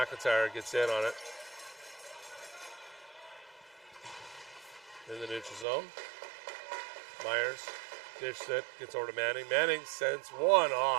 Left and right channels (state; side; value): drops out; left; at 5.7 s